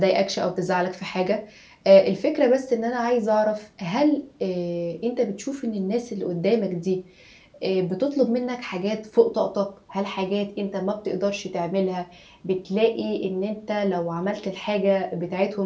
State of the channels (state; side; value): identical; both; correlation 1.00